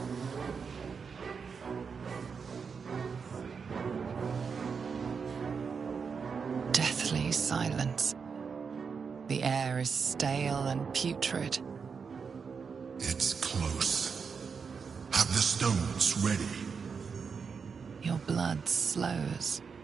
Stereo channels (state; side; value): quieter; left; 5.8 dB